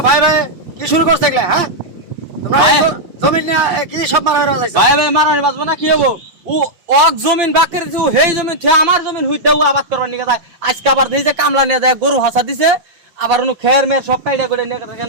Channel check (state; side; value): late; left; 5.9 ms